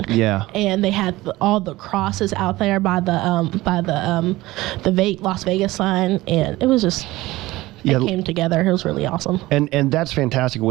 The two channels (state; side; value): quieter; left; 18.5 dB